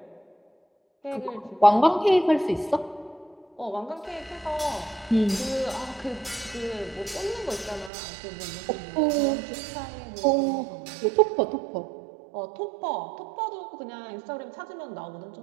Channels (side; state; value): left; drops out; at 7.9 s